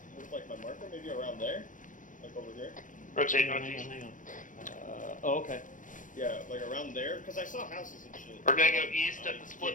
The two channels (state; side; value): late; right; 0.38 ms